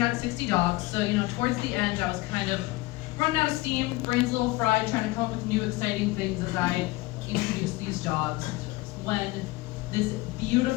60 dogs, so towards the end, I was kind of running out of steam, brains a little fried, trying to come up with new exciting things as I introduced these dogs. When this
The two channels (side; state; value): right; quieter; 20.5 dB